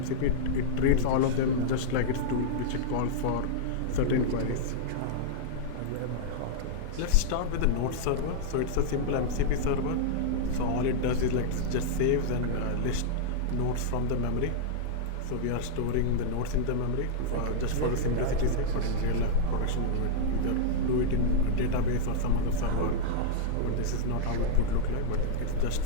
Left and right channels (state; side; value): different; both; correlation -0.02